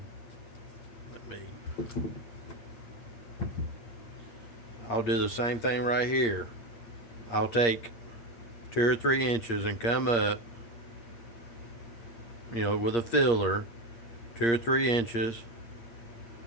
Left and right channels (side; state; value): right; late; 8.6 ms